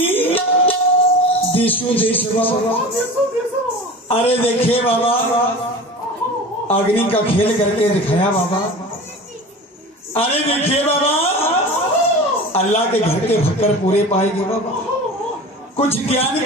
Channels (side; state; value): both; normal; correlation 0.35